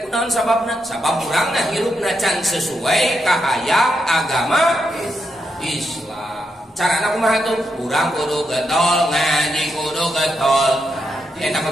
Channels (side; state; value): both; normal; correlation 0.82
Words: sababna? Sabab urangna hirupna can sesuai ka hayang agama Islam. Carana kumaha tuh? Urang kudu getol ngaji, kudu getol. Eta